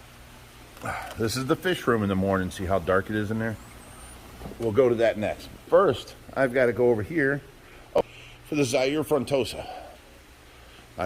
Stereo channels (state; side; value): identical; both; correlation 1.00